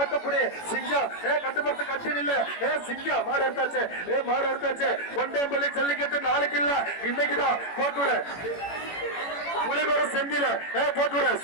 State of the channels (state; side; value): late; right; 18 ms